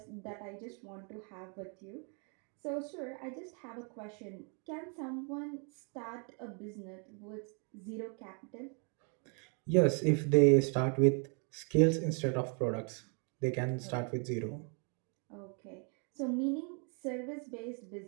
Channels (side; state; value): left; quieter; 38.1 dB